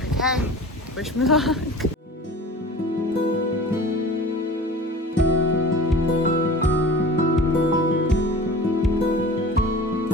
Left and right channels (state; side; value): normal; both; correlation 0.39